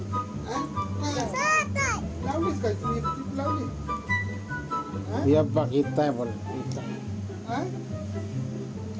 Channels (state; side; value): identical; both; correlation 1.00